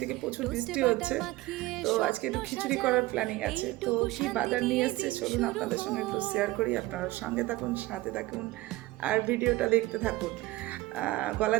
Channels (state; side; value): quieter; left; 18.9 dB